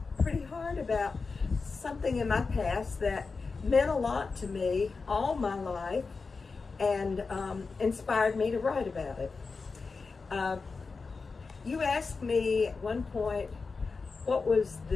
pretty hard about something in my past that meant a lot to me all my life and inspired me to write about it. You asked me at one point what was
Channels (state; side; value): quieter; right; 4.4 dB